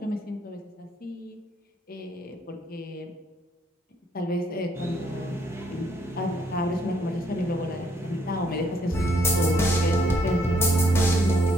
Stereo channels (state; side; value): normal; both; correlation 0.69